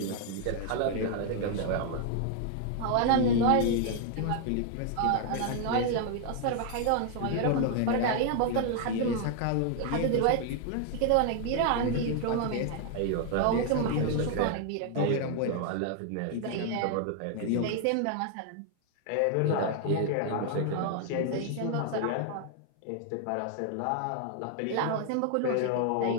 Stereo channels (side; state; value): both; different; correlation 0.00